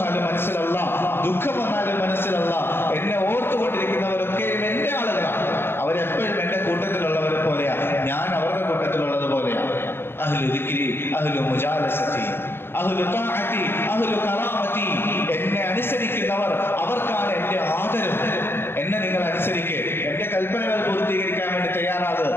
മനസ്സിലല്ല, ദുഃഖം വന്നാലും മനസ്സിലല്ല, എന്നെ ഓർത്തുകൊണ്ടിരിക്കുന്നവരൊക്കെയും എൻ്റെ ആളുകളാണ്. അവരെപ്പോഴും എൻ്റെ കൂട്ടത്തിലുള്ളവരെ പോലെയാണ്, ഞാൻ അവരുടെ കൂട്ടത്തിലുള്ളത് പോലെയാണ്. അഹ്ലു ദിക്രി, അഹ്ലു മുജാലസതി, അഹ്ലു തഅതി, അഹ്ലു കറാമതി. എന്നെ അനുസരിക്കുന്നവർ, അവർക്കാണ് എൻ്റെ ആദരം. എന്നെ നിങ്ങൾ അനുസരിക്കുക, എൻ്റെ കൽപ്പനകൾ പൂർത്തീകരിക്കാൻ വേണ്ടി തയ്യാറാകുക,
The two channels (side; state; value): right; late; 0.11 ms